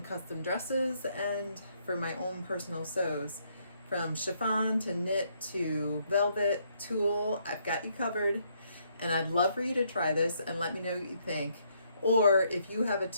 dresses and for my own personal sews. From chiffon to knit to velvet, tulle, I've got you covered, and I'd love for you to try this and let me know what you think. Or if you have a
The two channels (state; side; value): inverted; both; correlation -0.71